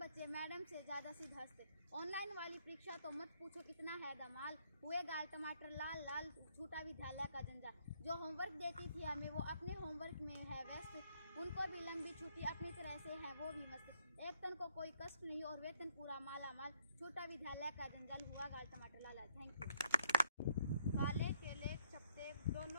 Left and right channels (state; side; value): inverted; both; correlation -0.69